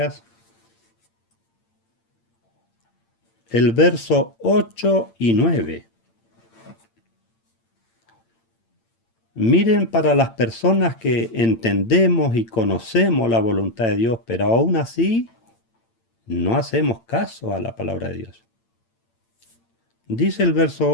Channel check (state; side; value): late; right; 8.8 ms